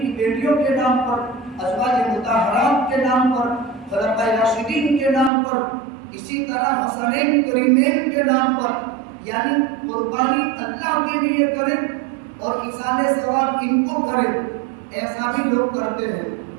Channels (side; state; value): left; drops out; at 5.3 s